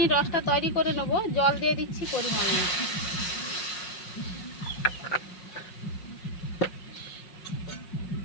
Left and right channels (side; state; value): right; late; 5.4 ms